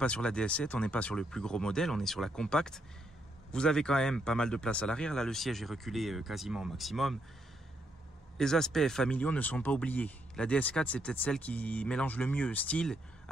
sur la DS7, on n'est pas sur le plus gros modèle, on est sur la compacte. Vous avez quand même pas mal de place à l'arrière. Là, le siège est reculé quasiment au maximum. Les aspects familiaux ne sont pas oubliés. La DS4, c'est peut-être celle qui mélange le mieux style,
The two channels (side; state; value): both; normal; correlation 0.76